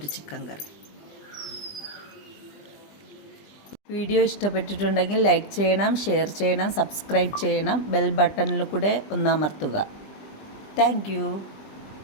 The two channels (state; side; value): late; right; 20 ms